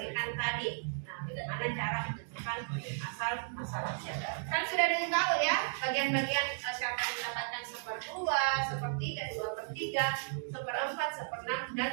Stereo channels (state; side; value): silent; left; digital silence